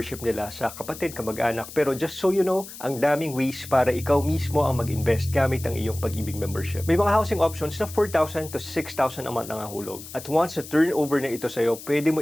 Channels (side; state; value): left; noise; hiss, 14 dB below the sound